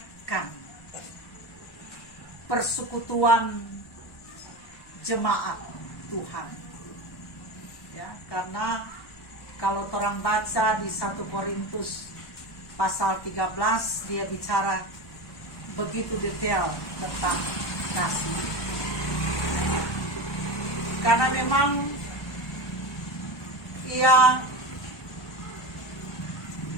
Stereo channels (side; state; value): right; late; 1.1 ms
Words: persekutuan jemaat Tuhan. Ya, karena kalau orang baca di 1 Korintus pasal 13, dia bicara begitu detail tentang kasih. Karena memang ia